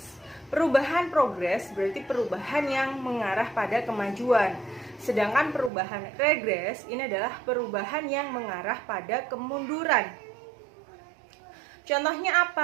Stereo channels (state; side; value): drops out; left; at 5.7 s